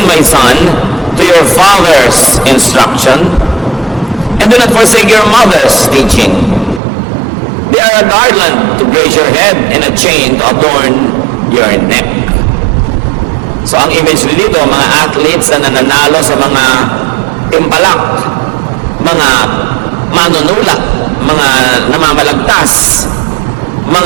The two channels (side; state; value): left; drops out; at 6.8 s